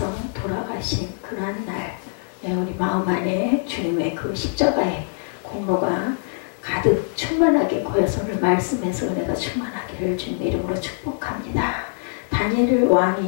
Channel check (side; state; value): right; silent; 58 dB below the other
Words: 돌아가신 그러한 날, 우리 마음 안에 주님의 그 십자가의 공로가 가득 충만하게 고여서 오늘 말씀에서 은혜가 충만하기를 주님의 이름으로 축복합니다. 다니엘